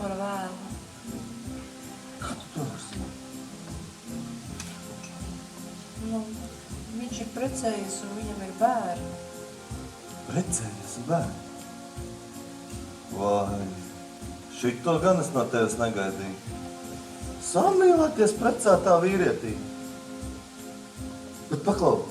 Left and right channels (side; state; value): both; identical; correlation 1.00